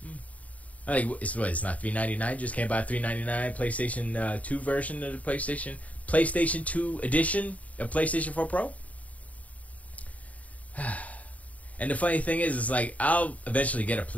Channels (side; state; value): right; late; 0.069 ms